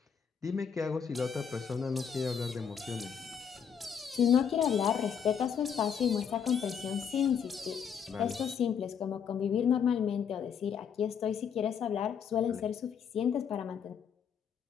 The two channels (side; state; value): right; quieter; 7.4 dB